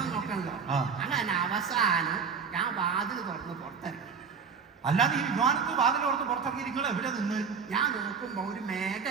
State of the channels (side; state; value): left; quieter; 6.0 dB